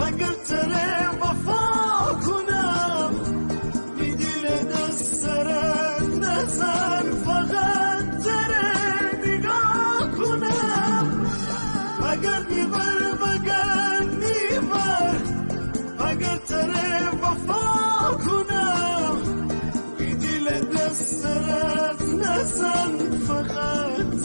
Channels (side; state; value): both; inverted; correlation -1.00